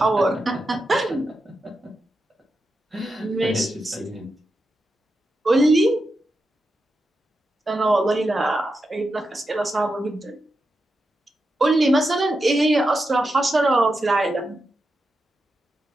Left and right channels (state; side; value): normal; both; correlation 0.88